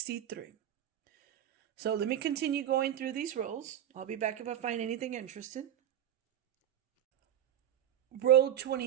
So let me continue going through these rows. I'll be back if I find anything interesting. Row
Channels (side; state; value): left; quieter; 10.9 dB